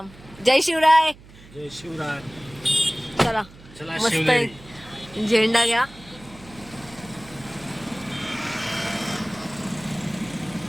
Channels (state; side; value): noise; right; hum, 21 dB below the sound